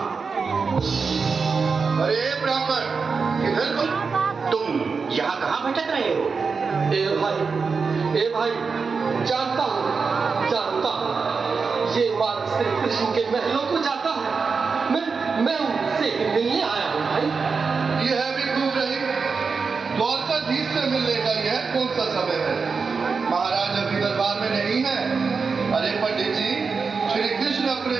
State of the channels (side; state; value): left; quieter; 5.0 dB